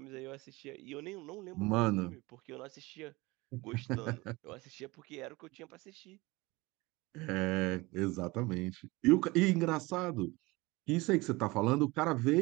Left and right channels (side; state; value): left; quieter; 22.6 dB